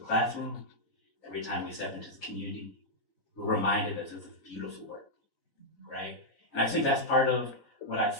every time we step into the community, we're reminded that this is beautiful work, right? And I think that's part of what I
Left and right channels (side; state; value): right; late; 4.0 ms